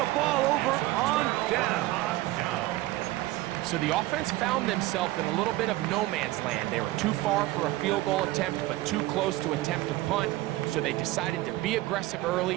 ball over on down. So the offense found themselves in a little bit of no man's land. They were too far for a field goal attempt, but too close to attempt a punt. So they decided to be aggressive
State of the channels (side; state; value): left; quieter; 17.8 dB